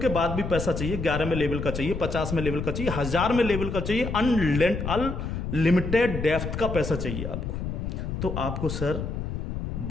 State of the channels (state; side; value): noise; left; rumble, 4 dB below the sound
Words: बाद भी पैसा चाहिए, 11 में लेवल का चाहिए, 50 में लेवल का चाहिए, 1000 में लेवल का चाहिए, अनलिमिटेड डेप्थ का पैसा चाहिए आपको, तो आपको सर